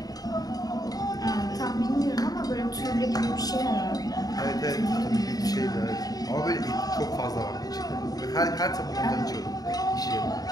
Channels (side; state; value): right; late; 0.18 ms